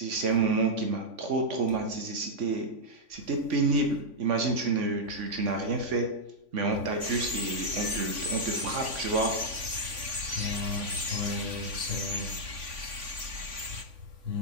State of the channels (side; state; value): left; late; 3.5 ms